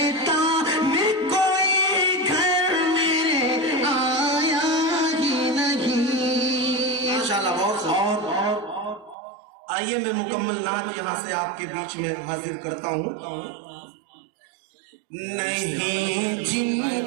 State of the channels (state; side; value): drops out; left; at 9.2 s